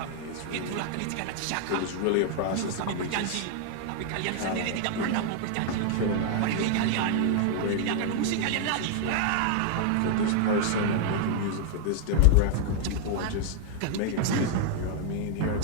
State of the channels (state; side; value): different; both; correlation 0.00